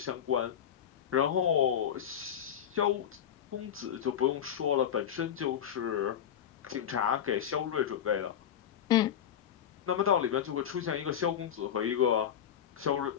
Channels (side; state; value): right; quieter; 9.2 dB